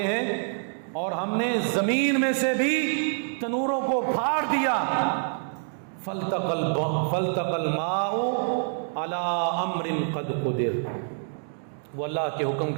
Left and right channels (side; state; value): left; silent; digital silence